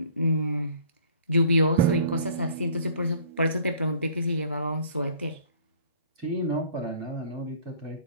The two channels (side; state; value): both; inverted; correlation -0.53